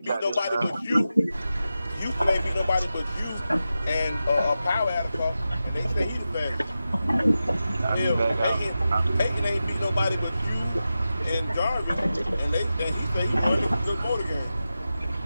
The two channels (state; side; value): inverted; both; correlation -0.92